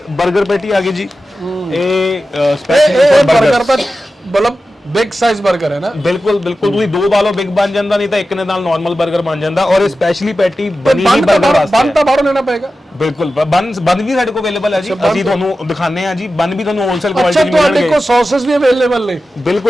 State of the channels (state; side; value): normal; both; correlation 0.93